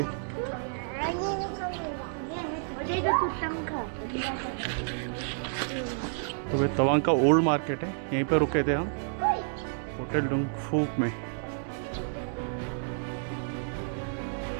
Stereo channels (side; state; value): left; silent; digital silence